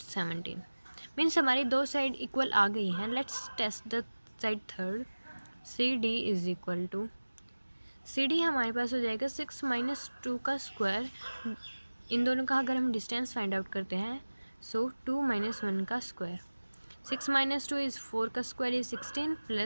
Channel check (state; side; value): inverted; both; correlation -1.00